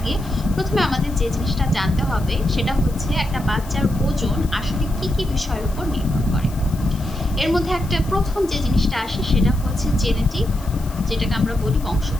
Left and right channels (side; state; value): left; noise; hiss, 20 dB below the sound